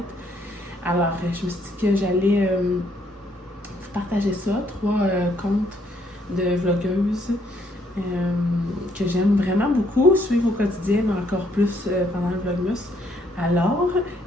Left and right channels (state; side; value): normal; both; correlation 0.69